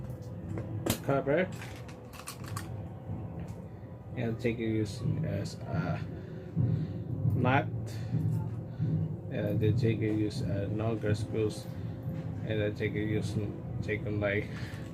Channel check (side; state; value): both; identical; correlation 1.00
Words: cover, and take it use as a nut, and then take it use longer screws, and then take it use take them like